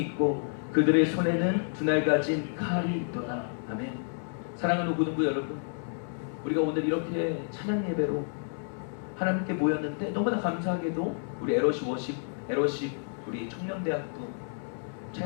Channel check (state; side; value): silent; right; digital silence